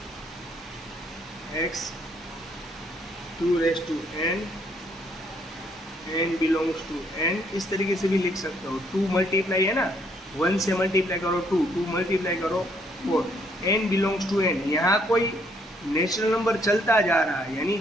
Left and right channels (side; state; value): both; normal; correlation 0.69